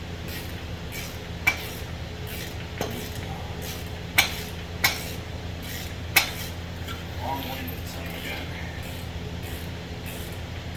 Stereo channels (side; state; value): both; identical; correlation 1.00